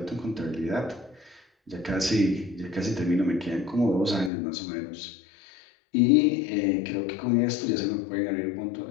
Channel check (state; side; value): drops out; right; at 4.3 s